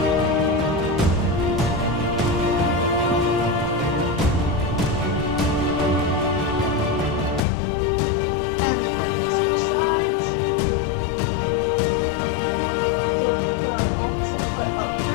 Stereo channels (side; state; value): right; drops out; at 7.4 s